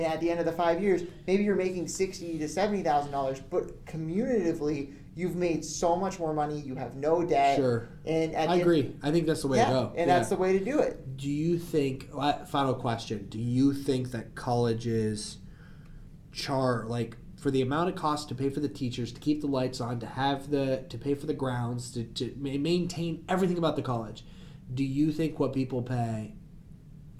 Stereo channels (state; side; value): identical; both; correlation 1.00